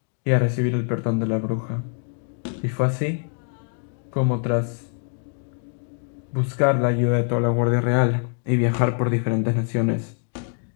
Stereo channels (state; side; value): silent; right; 56 dB below the other